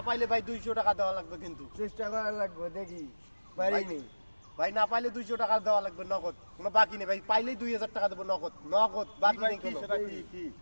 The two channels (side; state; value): both; inverted; correlation -1.00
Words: পাইলে ভাই 200 টাকা দেওয়া লাগবে কিন্তু। চেষ্টা করার লাগবো দেখি পারিনি ভাই না পাইলে 200 টাকা দেওয়া লাগবে নগদ, কোনো বাকি নেই ভাই। পাইলেই 2000 টাকা দেবো নগদ, নগদ বাকি নেই কোনো।